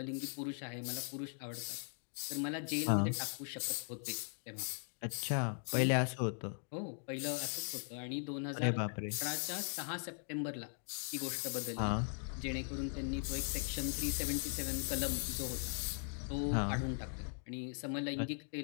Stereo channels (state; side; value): silent; right; 51 dB below the other